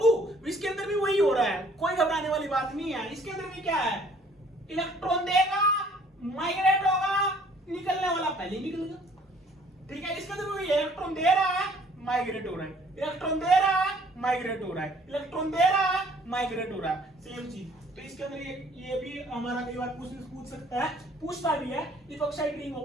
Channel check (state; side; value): normal; both; correlation 0.57